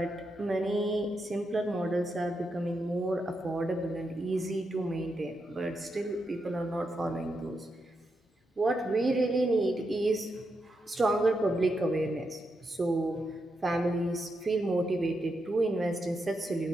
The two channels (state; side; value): normal; both; correlation 0.84